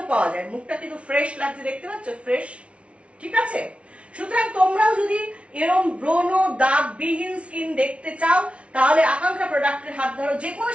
পাওয়া যায়। মুখটা কিন্তু ফ্রেশ লাগছে, দেখতে পাচ্ছ, ফ্রেশ। ঠিক আছে, সুতরাং তোমরাও যদি এরকম ব্রণ দাগবিহীন স্কিন দেখতে চাও তাহলে আকাঙ্ক্ষা প্রোডাক্টের হাত ধরো। যে কোনো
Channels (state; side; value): late; left; 0.061 ms